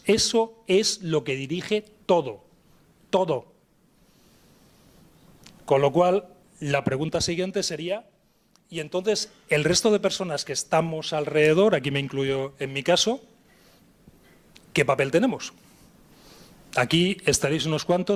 Eso es lo que dirige todo. Todo. Con lo cual, la pregunta siguiente sería, y entonces el resto de personas que estamos alrededor, aquí me incluyo en mi caso, ¿qué papel tenemos? Aquí estaréis unos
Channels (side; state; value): both; identical; correlation 1.00